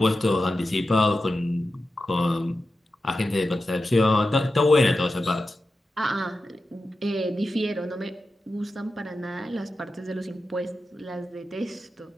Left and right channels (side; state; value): both; normal; correlation 0.92